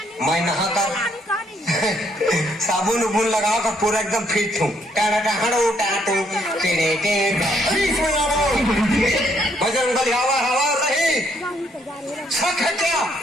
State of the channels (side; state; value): both; normal; correlation 0.70